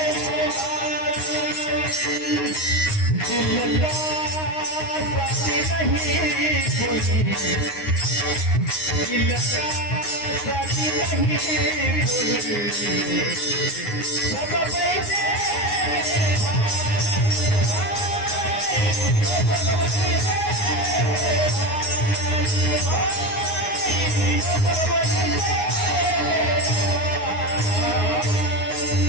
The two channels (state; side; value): late; right; 9.6 ms